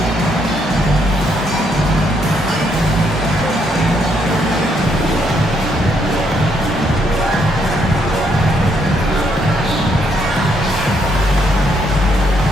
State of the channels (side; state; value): both; normal; correlation 0.73